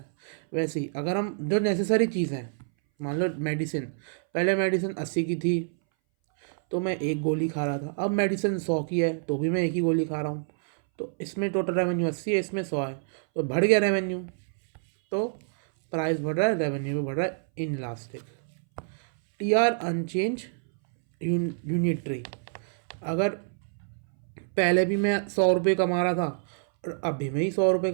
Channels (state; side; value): silent; left; 60 dB below the other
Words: वैसे ही अगर हम जो नेसेसरी चीज़ है, मान लो मेडिसिन, पहले मेडिसिन 80 की थी तो मैं एक गोली खा रहा था, अब मेडिसिन 100 की है तो भी मैं एक ही गोली खा रहा हूँ, तो इसमें टोटल रेवेन्यू 80 है, इसमें 100 है, तो बढ़ गया रेवेन्यू, तो प्राइस बढ़ रहा है, रेवेन्यू भी बढ़ रहा है inelastic. T R unchanged unitary, अगर पहले भी मैं 100 रुपये कमा रहा था और अभी मैं ही 100 रुपये